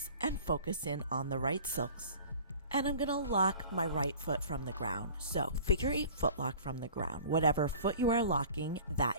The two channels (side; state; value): both; inverted; correlation -0.44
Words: and focus in on the right silks. And I'm going to lock my right foot from the ground. So figure 8 footlock from the ground. Whatever foot you are locking, that